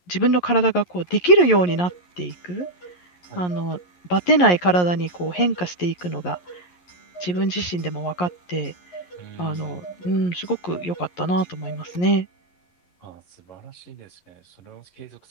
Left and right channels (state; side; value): late; right; 11 ms